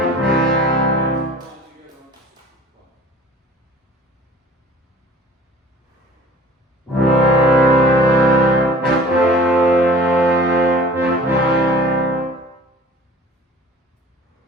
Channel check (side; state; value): both; normal; correlation 0.46